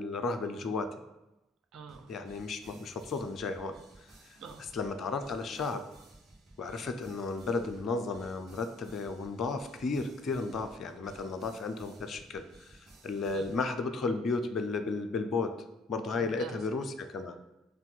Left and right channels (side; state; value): right; quieter; 3.2 dB